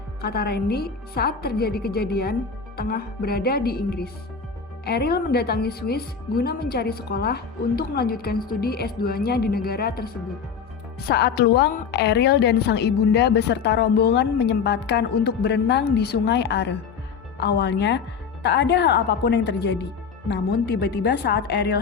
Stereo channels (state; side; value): quieter; right; 6.1 dB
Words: kata Randy, saat terjadi kejadian, tengah berada di Inggris. Eril mendatangi Swiss guna mencari sekolah untuk melanjutkan studi S2-nya di negara tersebut. Saat luang, Eril dan sang ibunda beserta rombongan menyempatkan untuk berenang di Sungai Are. Awalnya, tak ada hal apapun yang terjadi. Namun tiba-tiba saat Eril